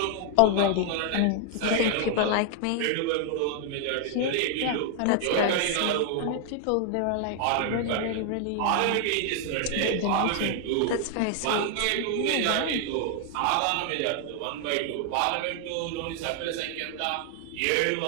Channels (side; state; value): both; different; correlation 0.00